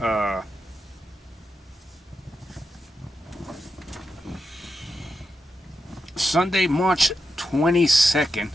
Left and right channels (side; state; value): both; normal; correlation 0.87